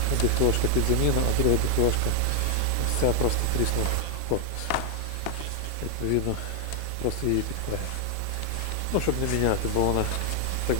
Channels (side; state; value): both; different; correlation 0.00